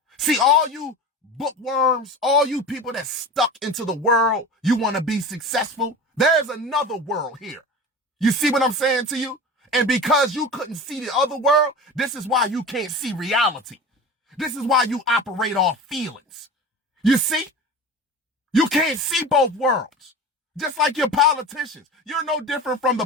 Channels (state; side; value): normal; both; correlation 0.33